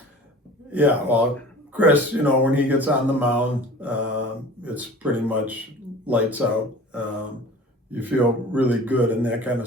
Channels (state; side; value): normal; both; correlation 0.42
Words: Yeah, well, Chris, when he gets on the mound, it's pretty much lights out. You feel really good in that kind